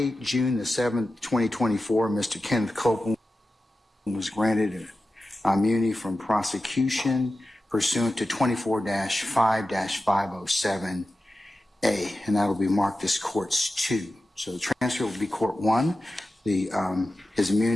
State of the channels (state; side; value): normal; both; correlation 0.93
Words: June the 7th, 2024, Mr. Kenneth Copeland was granted immunity from prosecution pursuant to 24-5-507A, and that'll be marked as Courts 2. So the transcript will be Court 1. His